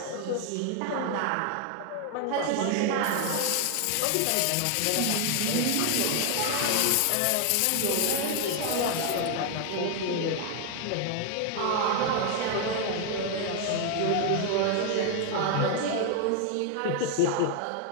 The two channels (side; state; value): both; different; correlation 0.00